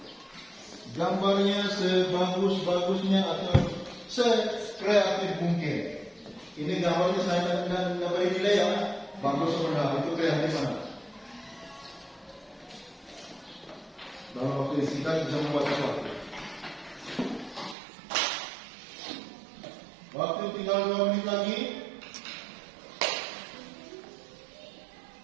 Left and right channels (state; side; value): drops out; left; at 17.8 s